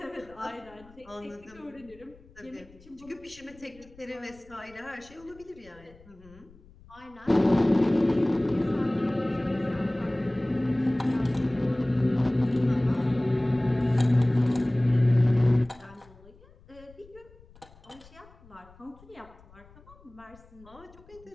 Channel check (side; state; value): left; noise; rumble, 25 dB below the sound